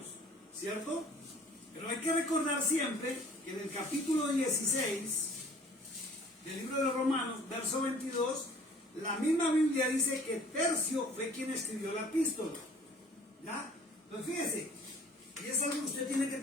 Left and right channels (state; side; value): normal; both; correlation 0.53